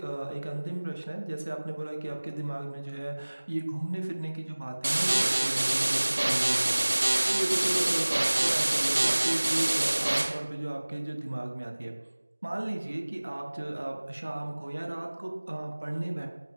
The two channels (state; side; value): inverted; both; correlation -1.00